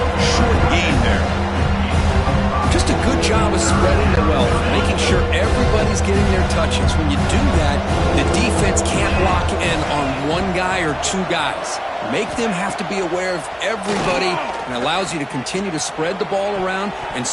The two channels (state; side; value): identical; both; correlation 1.00